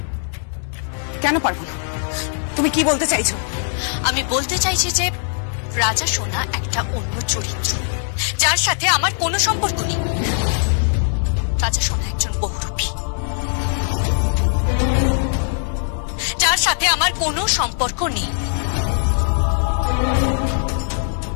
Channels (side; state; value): right; silent; digital silence